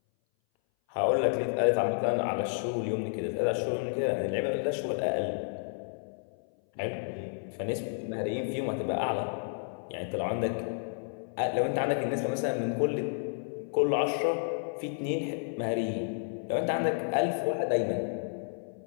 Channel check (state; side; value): silent; right; 57 dB below the other